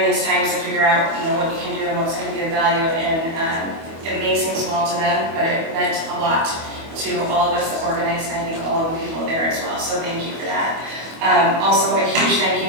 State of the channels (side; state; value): left; late; 25 ms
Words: these times to figure out, what you can do and what's going to be of value, and it may seem small to them, but it meant a lot to all of us that organized, and I think all of the people there as well, so thank you for that. Also, a huge thank